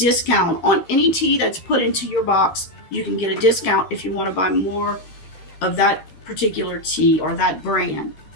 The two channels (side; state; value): right; late; 13 ms